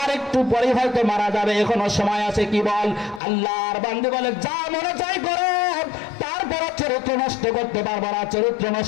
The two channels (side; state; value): right; drops out; at 3.2 s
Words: আর একটু পরে হয়তো মারা যাবে, এখনো সময় আছে, কি বল? আল্লাহর বান্দি বলে যা মনে চাই করো, তারপর চরিত্র নষ্ট করতে পারবো না, চরিত্র